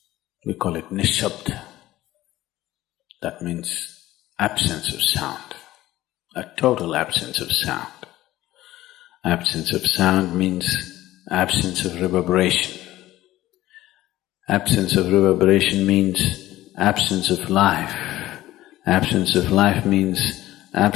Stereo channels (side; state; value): right; quieter; 15.7 dB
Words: We call it nishabd. That means absence of sound, a total absence of sound. Absence of sound means absence of reverberation. Absence of reverberation means absence of life. Absence of life means